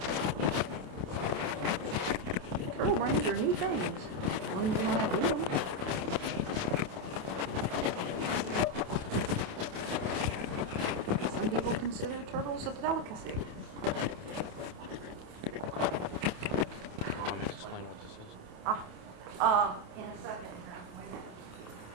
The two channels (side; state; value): left; late; 28 ms